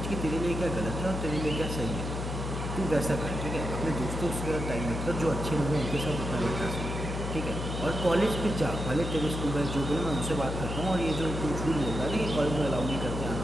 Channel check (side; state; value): left; noise; hum, 4 dB below the sound